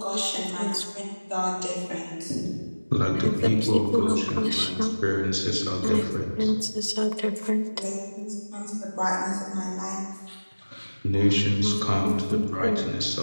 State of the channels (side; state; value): both; inverted; correlation -1.00